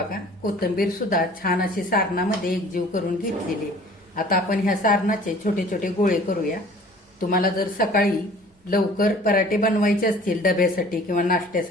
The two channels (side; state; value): both; normal; correlation 0.49